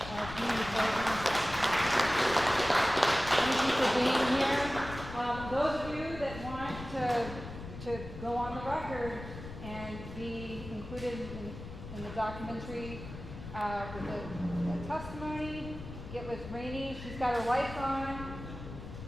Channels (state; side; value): noise; left; rumble, 11 dB below the sound